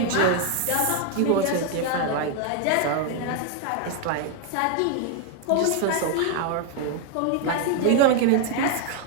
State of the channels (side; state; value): both; different; correlation 0.00